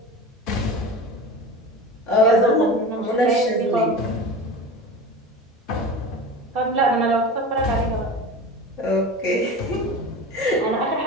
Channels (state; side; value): normal; both; correlation 0.32